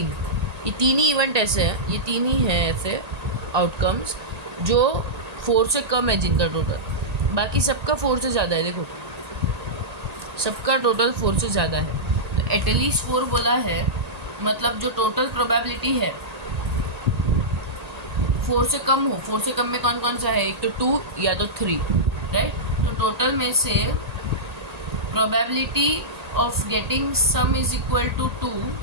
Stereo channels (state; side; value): late; left; 1.8 ms